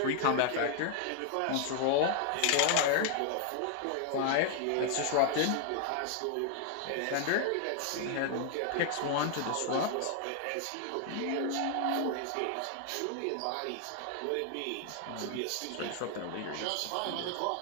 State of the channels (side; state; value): both; different; correlation 0.00